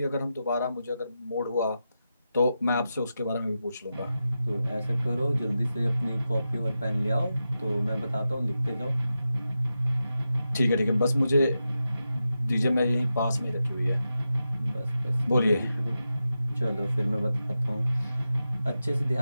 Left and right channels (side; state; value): both; inverted; correlation -0.90